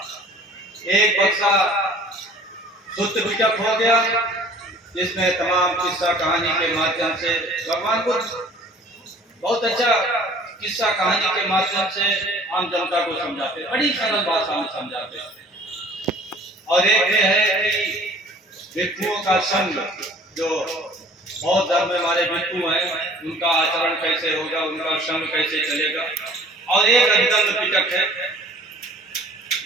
एक बक्सा शुद्ध पिटक हो गया, जिसमें तमाम किस्सा कहानी के माध्यम से भगवान को बहुत अच्छा किस्सा कहानी के माध्यम से आम जनता को समझाते, बड़ी सरल भाषा में समझाते। और एक ये है कि भिक्षुओं का संग, जो बौद्ध धर्म में हमारे भिक्षु हैं, उनका आचरण कैसे होगा, उनका संग कैसे चलेगा। और एक अभिधम्म पिटक है,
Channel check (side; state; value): both; normal; correlation 0.50